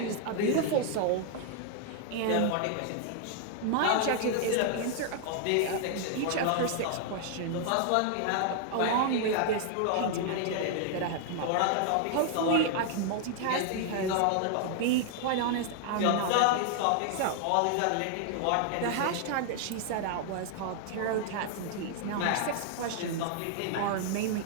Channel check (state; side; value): different; both; correlation 0.00